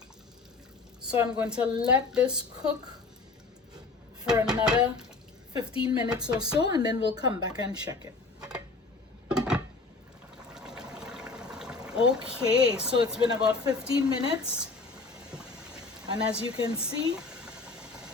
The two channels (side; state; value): right; quieter; 3.9 dB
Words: So I'm going to let this cook for another 15 minutes or so, and then we'll come back and check it. Okay, so it's been about 15 minutes, and as you can see,